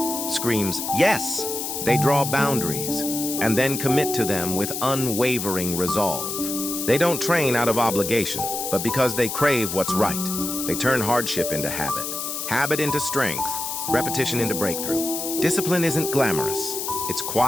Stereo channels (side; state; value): left; noise; hiss, 4 dB below the sound